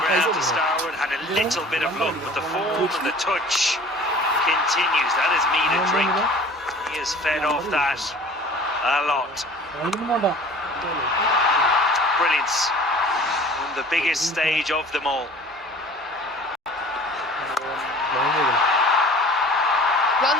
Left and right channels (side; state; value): both; normal; correlation 0.45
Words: ground to starward, had a little bit of luck, but the form and the touch continues. That is meat and drink. He has fed off that a lot. Brilliance on the biggest stage of them all.